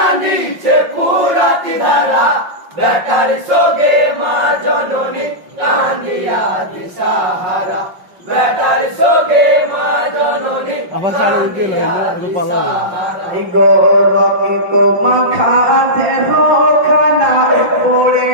ফুরাত ধারা বেটার শোকে মা জননী কাঁদিয়া দিশাহারা বেটার শোকে মা জননী কাঁদিয়া দিশাহারা গৌরকিত মাখা দেহ খানা পড়ে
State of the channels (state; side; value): late; left; 5.6 ms